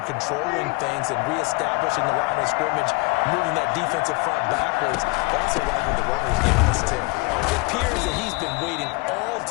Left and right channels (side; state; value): right; quieter; 26.9 dB